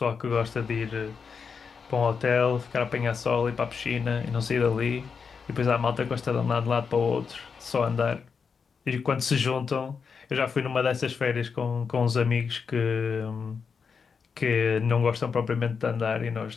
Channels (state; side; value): quieter; right; 5.8 dB